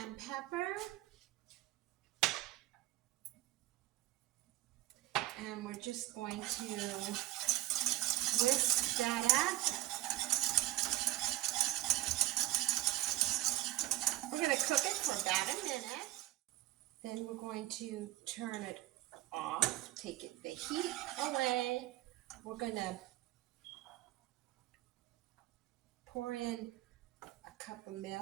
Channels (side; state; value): left; quieter; 16.8 dB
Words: pepper. And we're just going to whisk that up. We're going to cook it for about a minute. Then we're going to turn it off, take the heat away. We're going to pour in a cup of